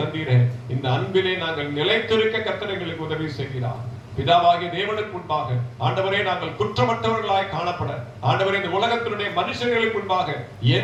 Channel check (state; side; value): identical; both; correlation 1.00